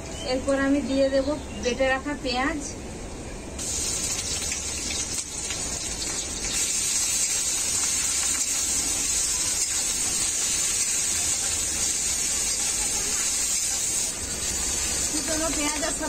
এরপর আমি দিয়ে দেব বেটে রাখা পেঁয়াজ। কুচনো পেঁয়াজের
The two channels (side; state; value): both; identical; correlation 1.00